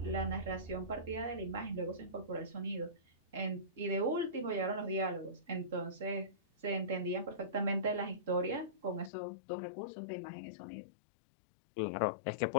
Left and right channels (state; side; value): drops out; right; at 9.1 s